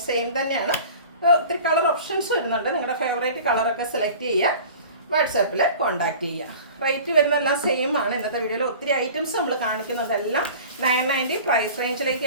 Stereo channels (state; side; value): inverted; both; correlation -0.41